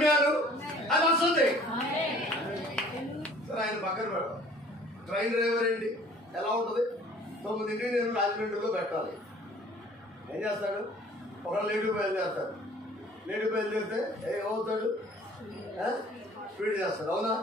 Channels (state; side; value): normal; both; correlation 0.52